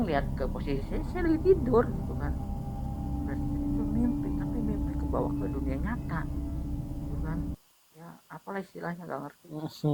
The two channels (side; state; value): both; identical; correlation 1.00